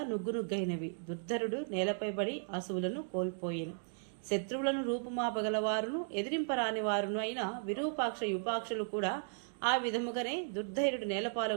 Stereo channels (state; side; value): silent; left; digital silence